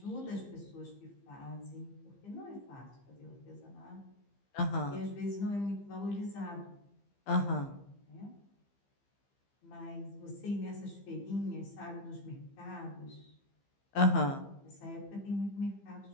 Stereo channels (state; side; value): late; right; 15 ms